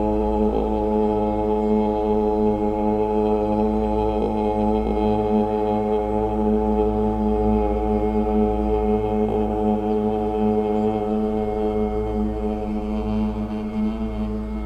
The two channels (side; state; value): both; identical; correlation 1.00